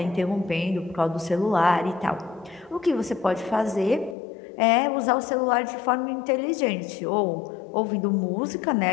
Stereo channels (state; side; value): drops out; right; at 4.2 s